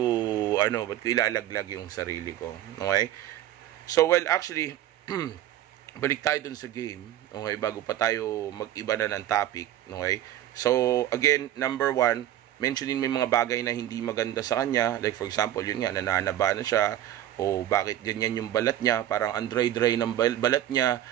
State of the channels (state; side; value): quieter; left; 12.6 dB